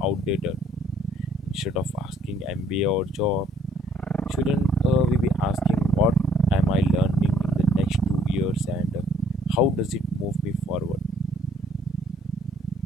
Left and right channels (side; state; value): both; normal; correlation 0.64